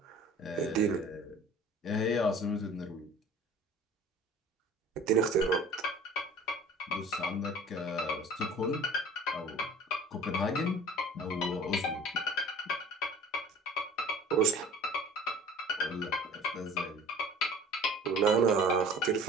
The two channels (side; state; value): both; normal; correlation 0.45